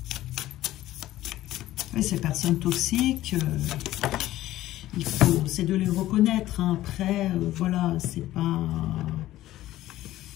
Oui, ces personnes toxiques, c'est de les reconnaître. Hein. Après, voilà, c'est pas...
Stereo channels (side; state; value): right; quieter; 14.9 dB